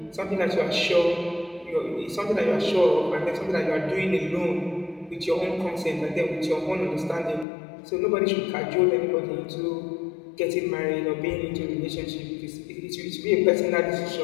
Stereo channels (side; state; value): right; drops out; at 7.5 s